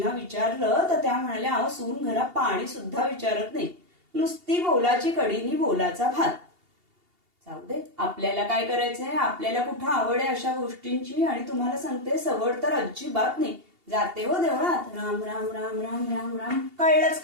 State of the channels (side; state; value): left; late; 2.8 ms